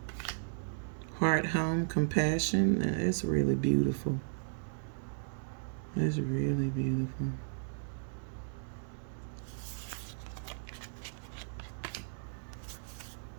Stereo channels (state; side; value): silent; left; digital silence